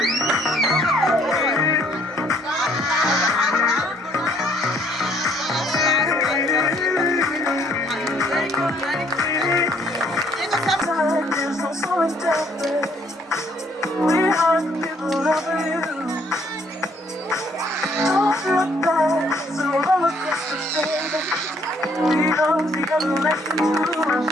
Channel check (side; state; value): both; normal; correlation 0.65